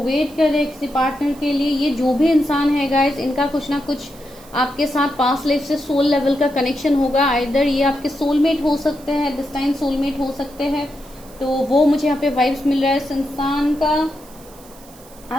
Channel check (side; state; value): right; noise; hiss, 23 dB below the sound